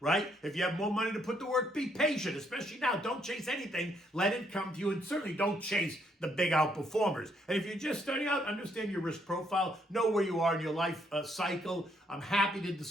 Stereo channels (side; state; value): both; normal; correlation 0.72